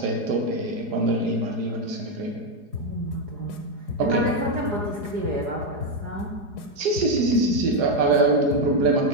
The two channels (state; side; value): late; left; 4.8 ms